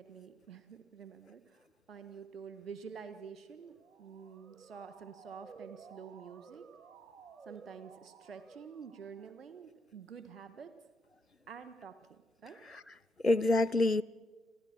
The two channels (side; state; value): both; normal; correlation 0.79